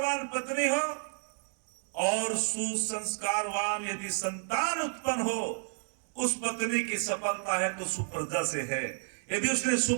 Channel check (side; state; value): left; silent; 55 dB below the other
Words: पत्नी हो, और सुसंस्कारवान यदि संतान उत्पन्न हो, उस पत्नी की सफलता है तो सुप्रजा से है। यदि उसने